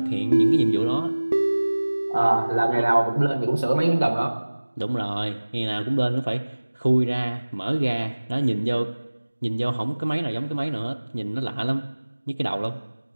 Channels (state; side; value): inverted; both; correlation -1.00